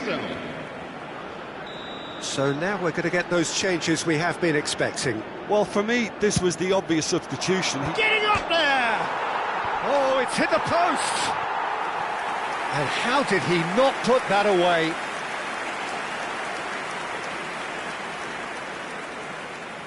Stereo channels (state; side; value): identical; both; correlation 1.00